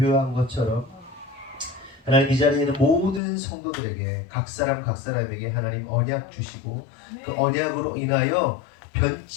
것처럼 하나님, 이 자리에 있는 모든 성도들에게 각 사람에게 하나님 언약 주시고 그 언약으로 인하여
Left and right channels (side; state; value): right; drops out; at 3.2 s